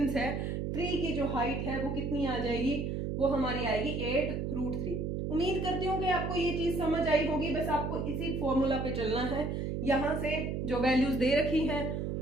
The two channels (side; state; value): right; noise; hum, 2 dB below the sound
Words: है, ट्री की जो हाइट है वो कितनी आ जाएगी, वो हमारी आएगी 8√3। उम्मीद करती हूँ कि आपको ये चीज समझ आई होगी, बस आपको इसी फॉर्मूला पे चलना है, यहां से जो वैल्यूज दे रखी हैं